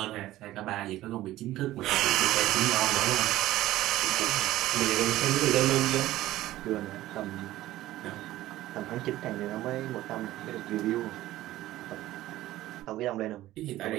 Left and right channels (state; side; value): quieter; left; 15.4 dB